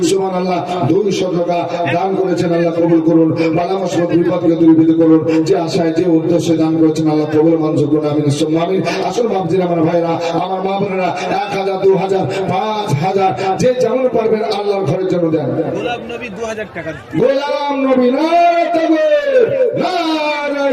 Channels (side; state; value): both; identical; correlation 1.00